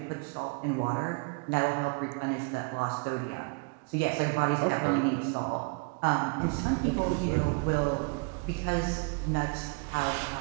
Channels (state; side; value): quieter; left; 36.0 dB